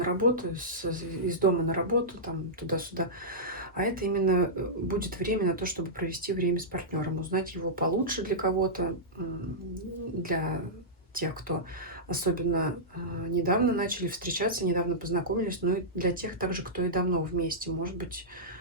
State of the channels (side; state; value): both; normal; correlation -0.13